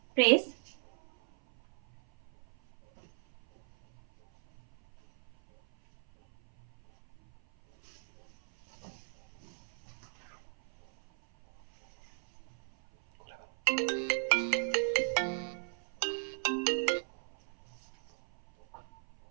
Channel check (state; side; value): silent; left; 54 dB below the other